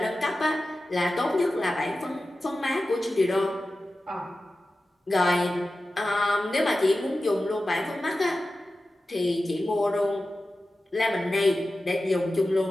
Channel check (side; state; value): both; normal; correlation 0.94